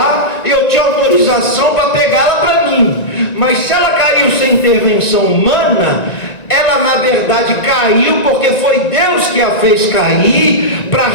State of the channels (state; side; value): late; right; 1.9 ms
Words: eu tinha autorização para pegá-la para mim. Mas se ela caiu sem intervenção humana, ela na verdade caiu porque foi Deus que a fez cair para